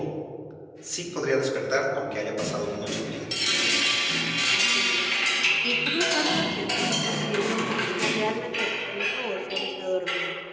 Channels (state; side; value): identical; both; correlation 1.00